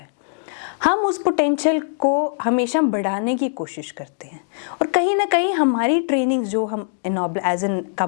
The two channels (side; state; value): right; silent; digital silence